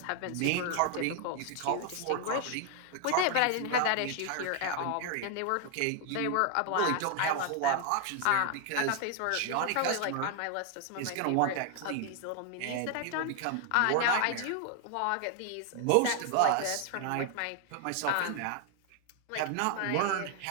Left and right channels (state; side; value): different; both; correlation 0.00